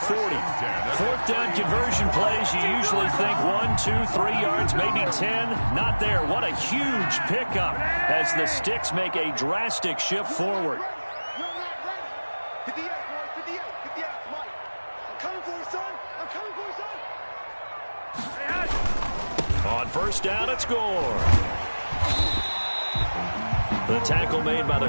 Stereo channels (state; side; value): inverted; both; correlation -1.00